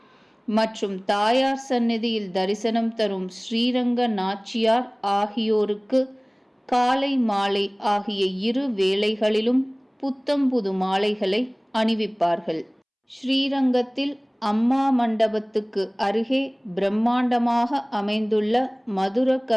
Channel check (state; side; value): identical; both; correlation 1.00